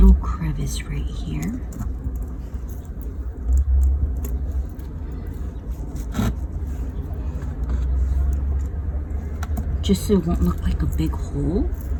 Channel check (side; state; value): both; identical; correlation 1.00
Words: crevice right here. Just so it won't look like a big hole.